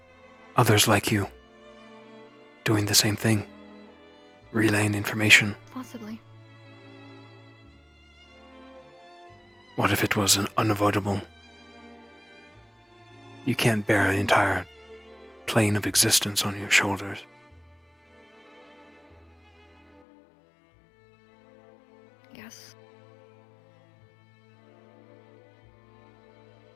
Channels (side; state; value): right; drops out; at 20.0 s